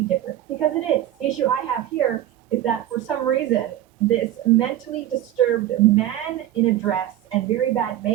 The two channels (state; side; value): quieter; left; 12.9 dB